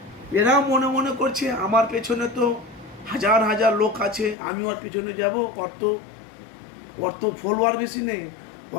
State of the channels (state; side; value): drops out; right; at 4.4 s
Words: এরা মনে মনে করছে আমার পেছনে তো হাজার হাজার লোক আছে, আমি ওর পিছনে যাব, ওর তো ফলোয়ার বেশি নেই,